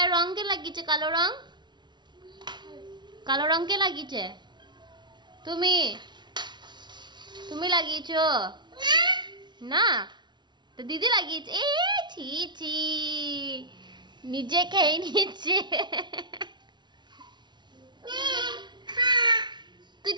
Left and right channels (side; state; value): left; late; 0.21 ms